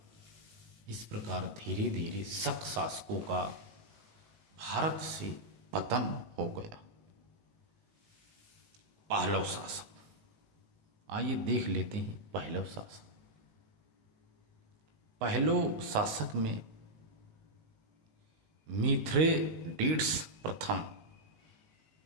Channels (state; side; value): late; left; 19 ms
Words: इस प्रकार धीरे धीरे शक शासकों का भारत से पतन हो गया। पहलव शासक, आइए देख लेते हैं पहलव शासक। पहलव शासक में मिथ्रेडेट्स प्रथम,